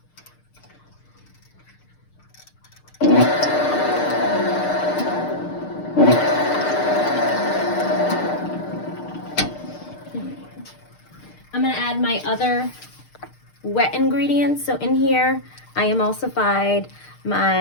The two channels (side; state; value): right; late; 6.6 ms